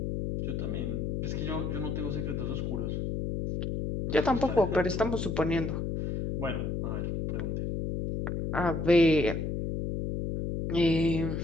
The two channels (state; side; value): noise; left; hum, 2 dB below the sound